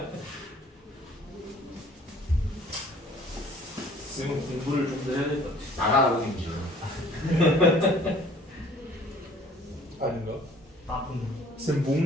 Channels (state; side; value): normal; both; correlation 0.53